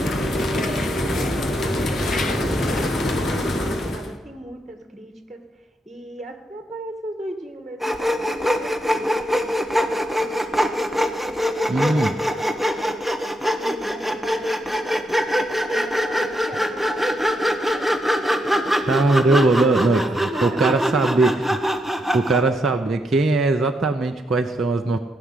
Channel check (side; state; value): both; normal; correlation 0.80